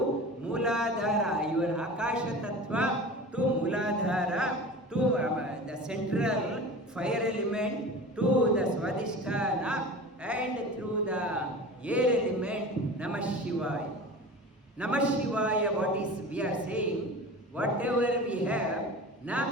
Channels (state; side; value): normal; both; correlation 0.35